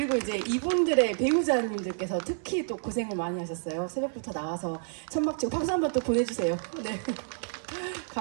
이제 이분들의 배우자님들께서 특히 또 고생을 많이 하셨어요. 새벽부터 나와서 천막 치고 박수 한번 또 보내주세요. 네,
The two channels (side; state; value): left; silent; 58 dB below the other